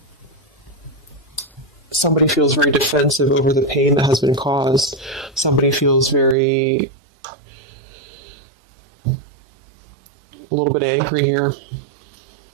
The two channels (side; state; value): left; drops out; at 6.4 s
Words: Somebody feels very defensive over the pain that has been caused. Somebody feels a little bit angry here.